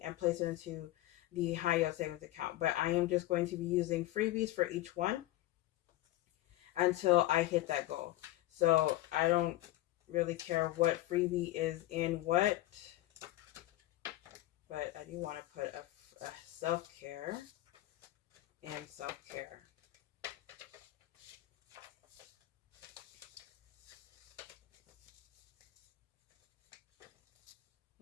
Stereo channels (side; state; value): right; quieter; 16.2 dB